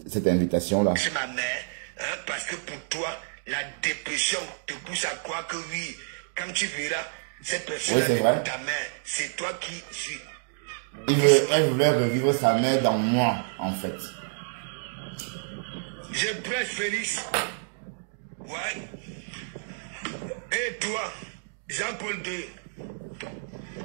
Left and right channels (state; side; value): silent; left; digital silence